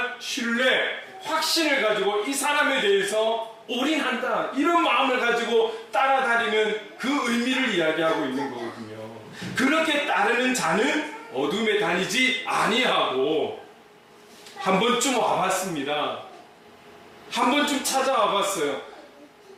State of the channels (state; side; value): identical; both; correlation 1.00